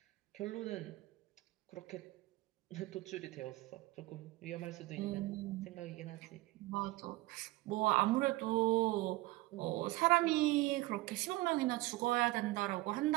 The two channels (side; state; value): left; quieter; 19.6 dB